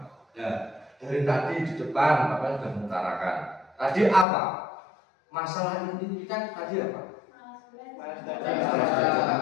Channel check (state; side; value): drops out; right; at 4.2 s